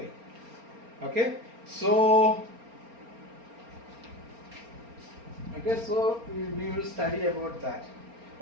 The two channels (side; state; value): left; late; 4.3 ms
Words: Okay, so we will study about that.